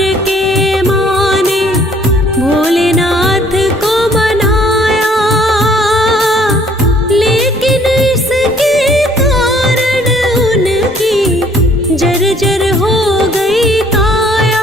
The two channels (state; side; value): normal; both; correlation 0.60